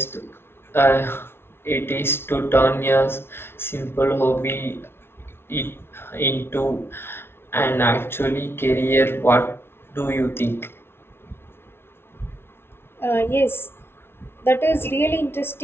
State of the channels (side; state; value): right; late; 0.12 ms